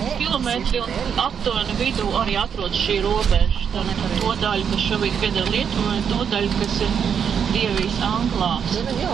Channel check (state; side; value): quieter; left; 7.5 dB